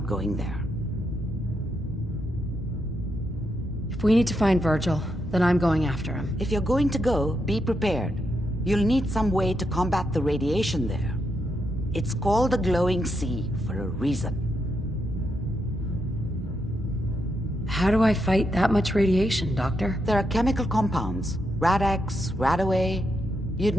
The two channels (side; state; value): both; normal; correlation 0.82